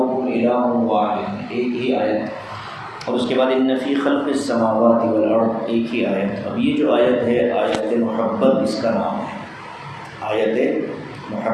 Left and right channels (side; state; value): both; identical; correlation 1.00